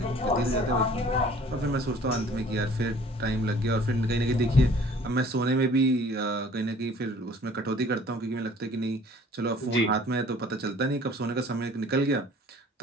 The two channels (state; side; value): normal; both; correlation 0.52